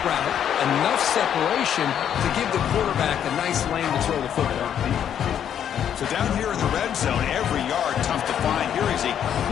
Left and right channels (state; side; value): quieter; right; 9.3 dB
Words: route, enough separation to give the quarterback a nice lane to throw the football. So down here in the red zone, every yard tough to find. Here is a